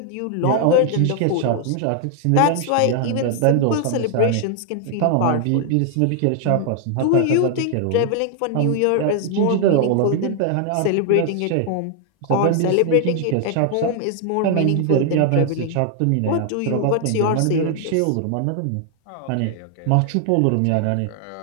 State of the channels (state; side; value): different; both; correlation 0.00